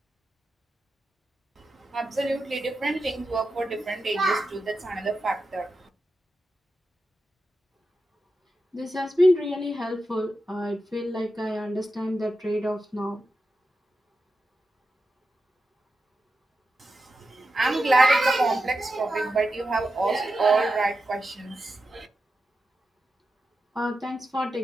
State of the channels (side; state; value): both; normal; correlation 0.89